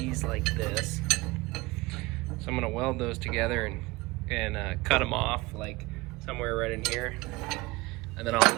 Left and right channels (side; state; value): left; quieter; 22.1 dB